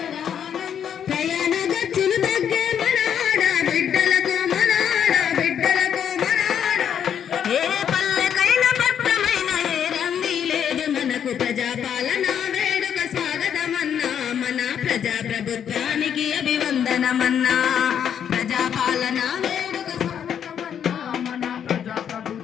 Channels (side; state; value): right; quieter; 8.7 dB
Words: ప్రయాణ ఖర్చులు తగ్గే మన ఆడబిడ్డలకు మన ఆడబిడ్డలకు మన ఏ పల్లెకైన పట్టమైన ఏ రంది లేదు మనకు ప్రజాపాలన వేడుక స్వాగతమన్నా మన ప్రజాప్రభుత్వానికి అభివందనమన్నా ప్రజాపాలన వేడుక స్వాగతమన్నా మన